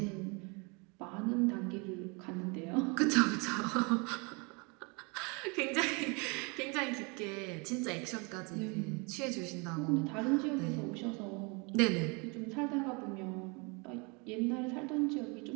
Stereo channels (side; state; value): left; quieter; 31.0 dB